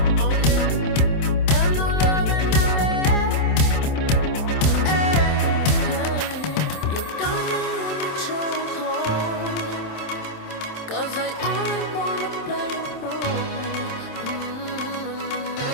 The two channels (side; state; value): right; late; 27 ms